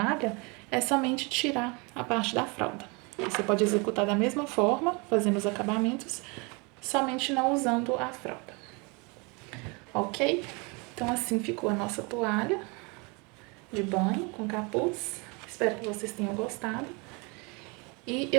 é somente tirar a parte da fralda. Você pode executar da mesma forma, fazendo os acabamentos, somente não usando a fralda. Ok? Então, assim ficou a nossa toalha de banho com capuz. Espero que vocês tenham gostado. E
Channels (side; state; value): left; quieter; 29.8 dB